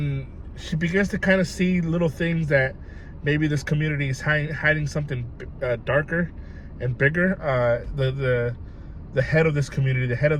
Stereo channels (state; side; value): identical; both; correlation 1.00